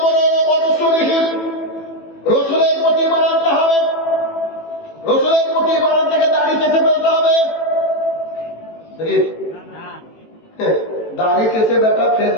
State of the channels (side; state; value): right; late; 18 ms